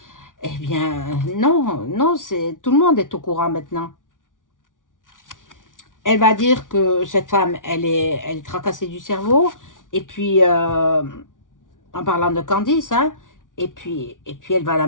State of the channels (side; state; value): right; late; 0.88 ms